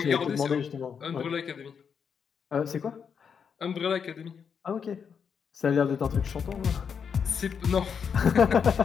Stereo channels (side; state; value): right; quieter; 6.8 dB